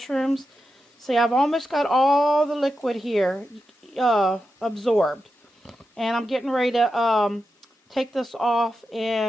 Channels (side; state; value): both; normal; correlation 0.89